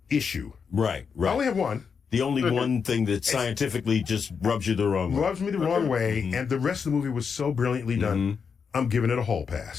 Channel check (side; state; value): right; quieter; 6.1 dB